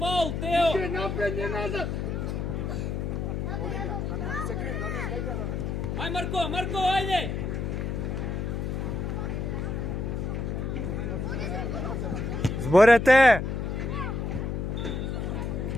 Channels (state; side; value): noise; left; hum, 2 dB below the sound